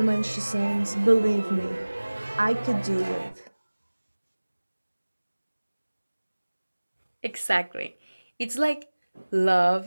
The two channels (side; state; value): both; inverted; correlation -1.00